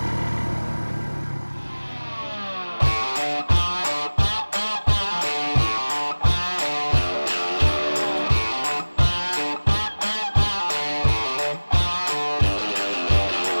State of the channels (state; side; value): inverted; both; correlation -1.00